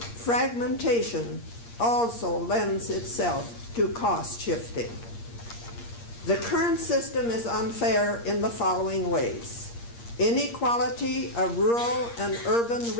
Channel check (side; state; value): right; late; 8.6 ms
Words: also lends itself to cost shifting. The current system is unfair in the following ways: inequality of rural and urban